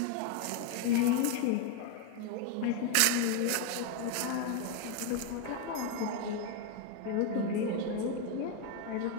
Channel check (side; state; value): both; different; correlation 0.01